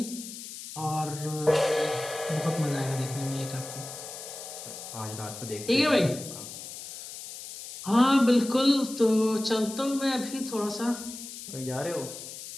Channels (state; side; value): noise; left; hiss, 11 dB below the sound